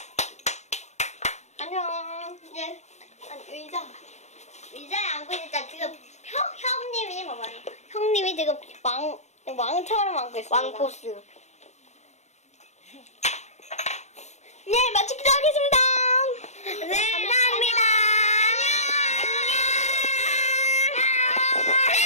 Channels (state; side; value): late; right; 0.33 ms